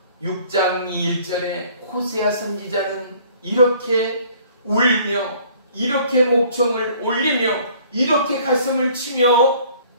6장 1절에 호세아 선지자는 이렇게 울며 이렇게 목청을 올리며 이렇게 가슴을 치며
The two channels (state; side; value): inverted; both; correlation -0.55